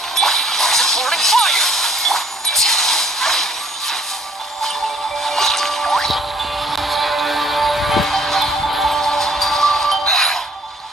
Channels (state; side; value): normal; both; correlation 0.61